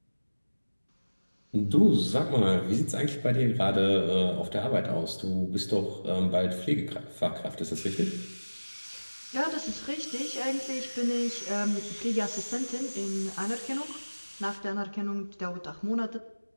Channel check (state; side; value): inverted; both; correlation -1.00